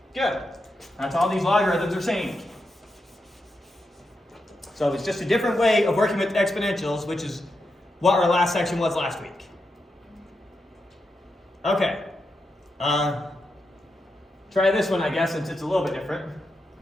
Good. That's all these logarithms are saying. So it's just a different way of working with exponentials, which is what our last section was last week. Okay. Try this one, I guess, since it's a little bit different.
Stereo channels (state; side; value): normal; both; correlation 0.86